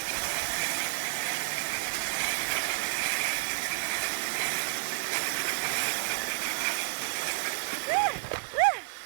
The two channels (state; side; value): silent; left; digital silence